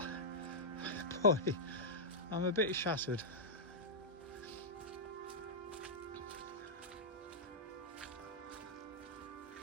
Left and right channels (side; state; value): both; normal; correlation -0.10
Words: boy, I'm a bit shattered.